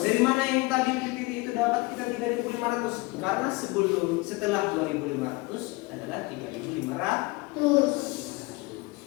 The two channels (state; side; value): quieter; right; 24.1 dB